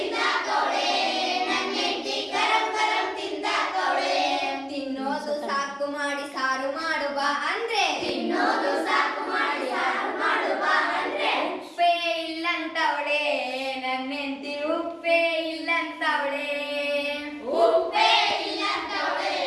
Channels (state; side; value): identical; both; correlation 1.00